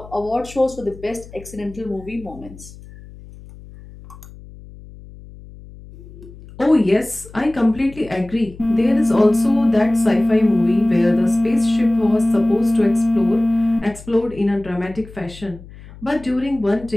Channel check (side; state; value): left; noise; hum, 19 dB below the sound